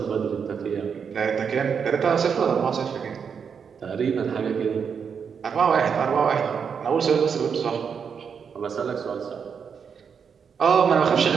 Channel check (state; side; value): quieter; left; 6.6 dB